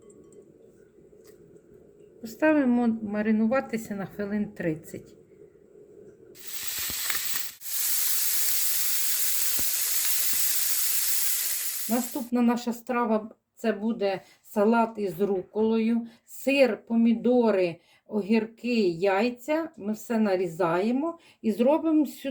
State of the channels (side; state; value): both; identical; correlation 1.00